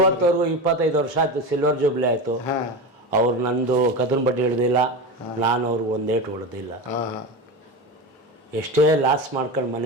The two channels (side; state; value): both; normal; correlation 0.23